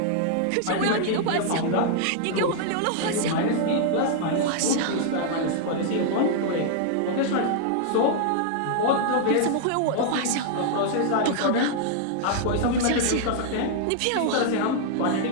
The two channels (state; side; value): different; both; correlation 0.00